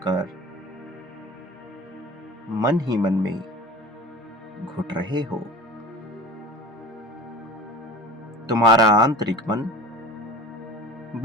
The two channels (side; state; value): both; normal; correlation 0.37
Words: कर मन ही मन में घुट रहे हो। तुम्हारा आंतरिक मन